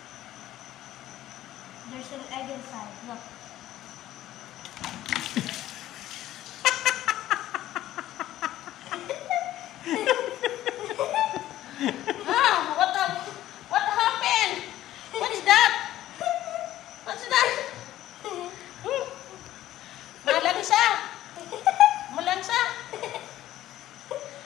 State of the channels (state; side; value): quieter; right; 13.8 dB